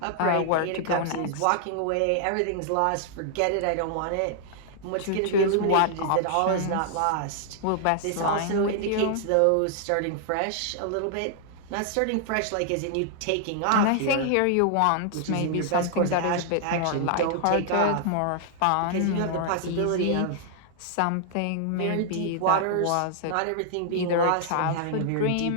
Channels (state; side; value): different; both; correlation -0.01